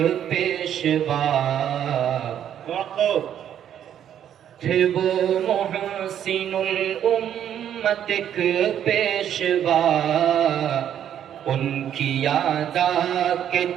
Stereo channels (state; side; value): quieter; left; 9.9 dB